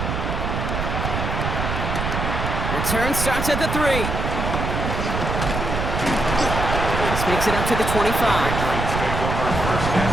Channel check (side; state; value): right; noise; rumble, 2 dB below the sound